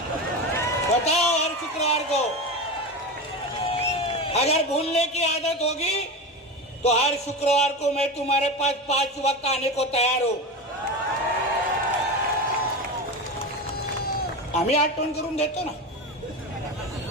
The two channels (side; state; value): both; normal; correlation 0.23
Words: हर शुक्रवार को. अगर भूलने की आदत होगी तो हर शुक्रवार को मैं तुम्हारे पास 5 वक्त आने को तैयार हूं. आम्ही आठवण करून देतो ना,